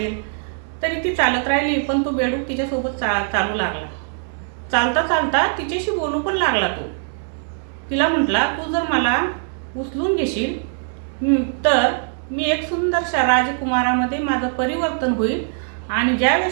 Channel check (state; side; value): silent; left; 65 dB below the other